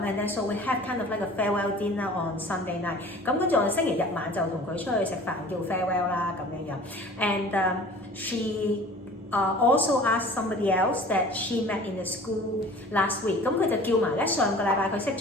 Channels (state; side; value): normal; both; correlation 0.45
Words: and then so we have kind of like a farewell dinner on Sunday night. 咁跟住我哋星期日晚就同佢出去食飯叫 farewell 啦咁樣樣。And she also asked somebody else that she met in the school last week. 咁佢就叫埋咧上個禮拜佢識